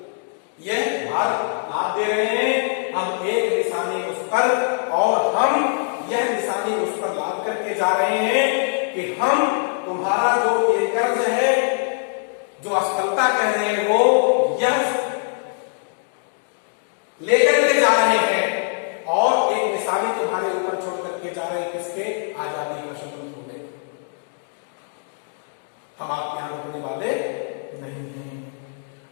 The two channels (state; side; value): silent; right; digital silence